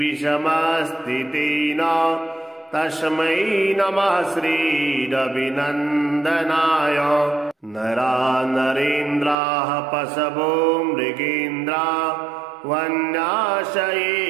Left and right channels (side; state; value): left; drops out; at 9.3 s